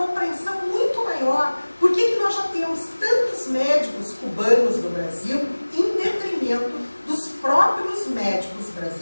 muito maior. Por que nós já temos tantos médicos cubanos no Brasil em detrimento dos próprios médicos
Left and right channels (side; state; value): both; inverted; correlation -1.00